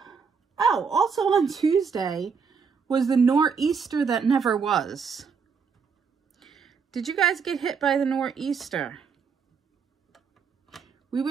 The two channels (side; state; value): left; quieter; 5.9 dB